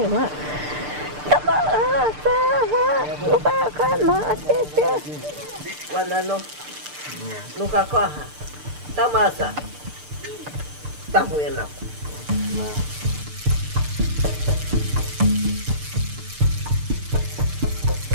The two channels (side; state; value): left; late; 6.7 ms